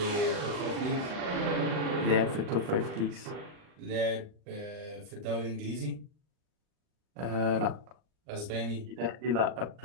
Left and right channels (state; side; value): late; left; 39 ms